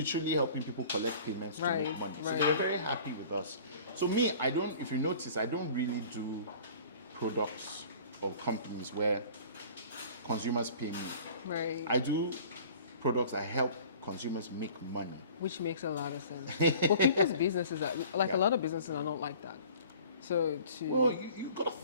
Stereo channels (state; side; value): inverted; both; correlation -0.47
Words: helping people collect payments to make money. So they were very happy with us. So me, if you notice, I don't really do products or companies where consumers pay me. Right. I do products that help consumers make money. Which makes a lot of sense. But people's businesses are like a lot of businesses are not like that. So Well, you gotta